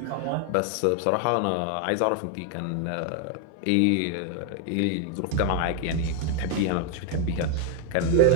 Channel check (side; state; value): both; different; correlation 0.00